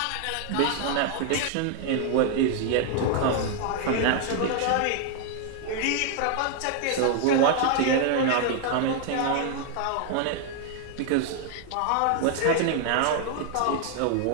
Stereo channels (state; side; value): different; both; correlation 0.00